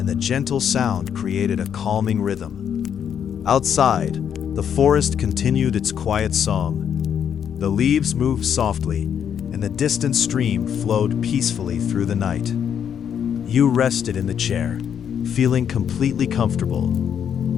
the gentle sound created a calming rhythm. Outside, the forest continued its quiet song. The leaves moved softly, and the distant stream flowed peacefully through the night. You rested in the chair, feeling completely comfortable.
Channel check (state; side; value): quieter; right; 8.4 dB